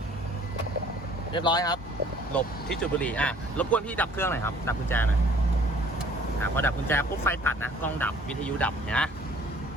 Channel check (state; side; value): normal; both; correlation 0.55